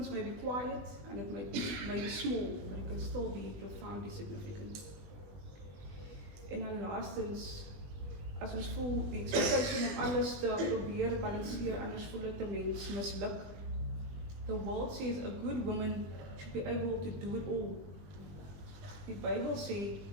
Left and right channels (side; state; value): left; late; 21 ms